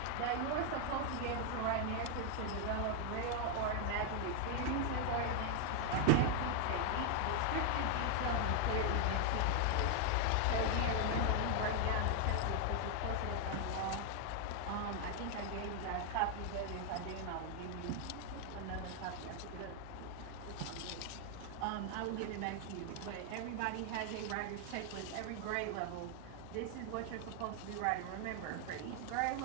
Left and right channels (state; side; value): different; both; correlation 0.00